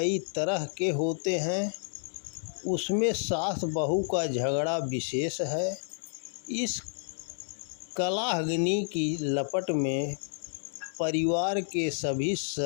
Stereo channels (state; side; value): silent; right; 58 dB below the other